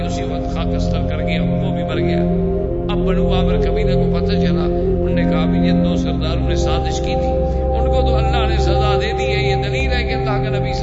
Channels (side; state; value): both; identical; correlation 1.00